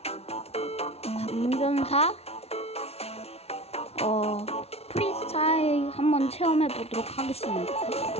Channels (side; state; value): right; late; 0.30 ms